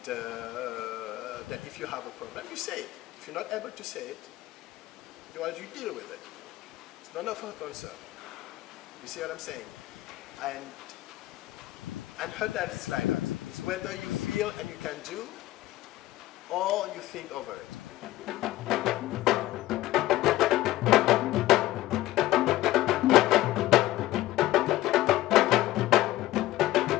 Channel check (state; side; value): quieter; right; 16.0 dB